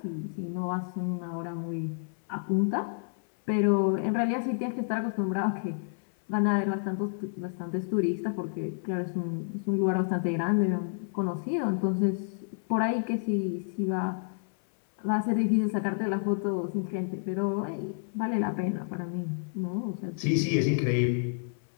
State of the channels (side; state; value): right; silent; 58 dB below the other